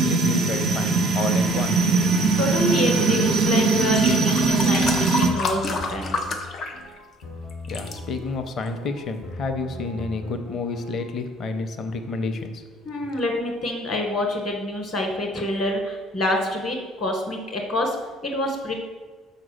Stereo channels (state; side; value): normal; both; correlation 0.57